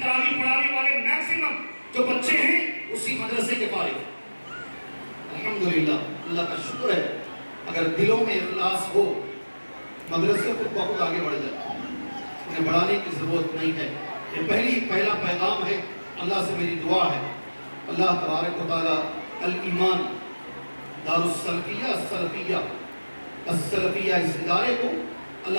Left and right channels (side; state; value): both; inverted; correlation -1.00